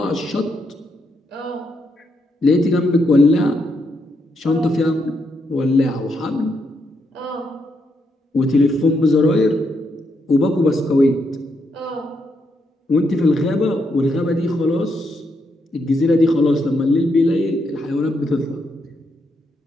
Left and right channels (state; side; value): normal; both; correlation 0.79